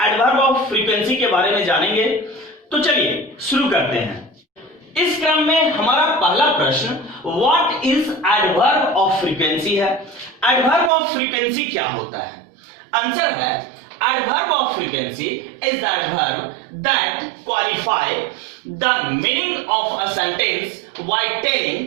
एडवर्ब ऑफ फ्रीक्वेंसी के बारे में जानेंगे, तो चलिए शुरू करते हैं। इस क्रम में हमारा पहला प्रश्न what is adverb of frequency है। एडवर्ब ऑफ फ्रीक्वेंसी क्या होता है? आंसर है adverb of frequency is the adverb that qualify the meaning of a sentence while telling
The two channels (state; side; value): drops out; left; at 10.9 s